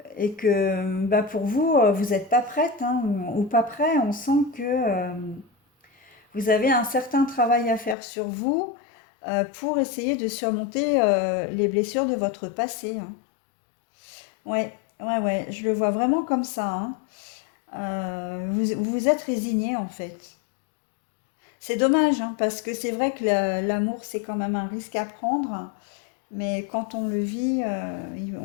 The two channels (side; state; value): right; drops out; at 8.0 s